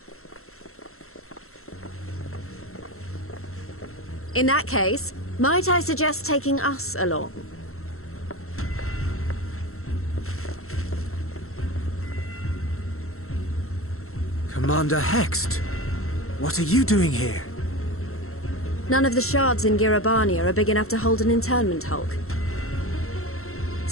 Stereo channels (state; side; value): late; right; 0.63 ms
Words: In that case, might I suggest taking us along? Commander Hext, what are you doing here? None of the shards in Girabania are big enough to hold an internment hulk.